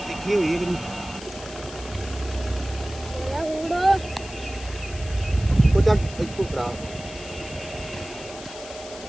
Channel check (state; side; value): noise; left; hiss, 14 dB below the sound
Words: दिखी हुई है चल इसको खड़ा